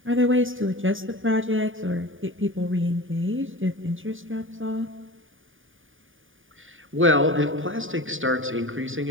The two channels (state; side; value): late; left; 0.58 ms